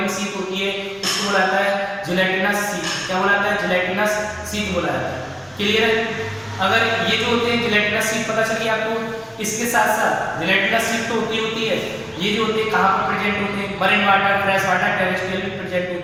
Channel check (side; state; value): both; identical; correlation 1.00